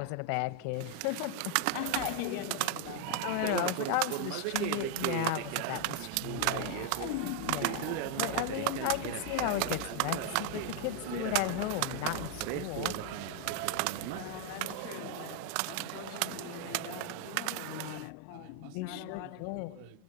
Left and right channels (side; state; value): both; different; correlation 0.01